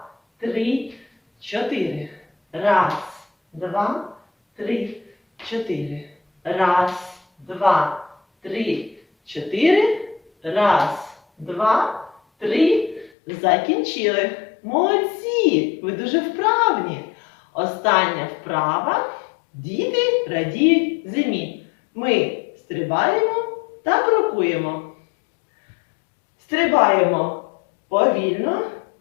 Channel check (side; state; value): right; drops out; at 13.1 s